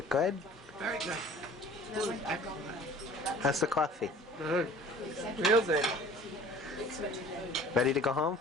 good? Very good. Good. Excellent. How's the coffee? Good. Real good. Ready to go home?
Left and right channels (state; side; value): normal; both; correlation 0.47